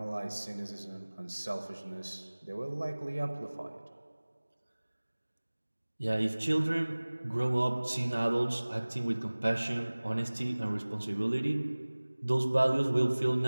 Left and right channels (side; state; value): both; inverted; correlation -1.00